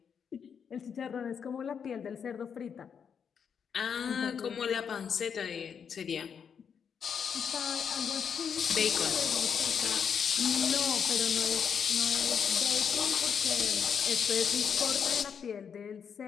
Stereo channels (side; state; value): right; quieter; 7.1 dB